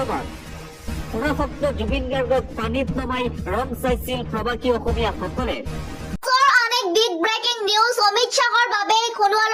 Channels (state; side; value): identical; both; correlation 1.00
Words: সুৰাসক্ত জুবিন গাৰ্গক পানীত নমাই ৰং চাইছিল প্ৰৱাসী অসমীয়াসকলে। Big breaking news. অমিত শ্বাহৰ বাবে